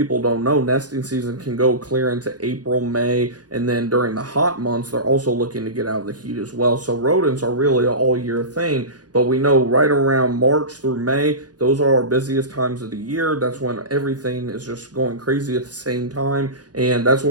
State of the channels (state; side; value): late; left; 0.69 ms